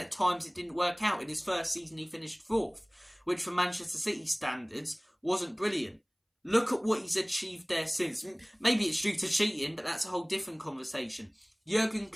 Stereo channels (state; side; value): identical; both; correlation 1.00